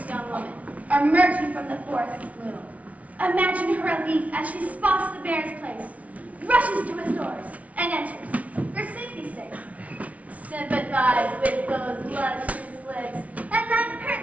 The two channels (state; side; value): late; left; 0.067 ms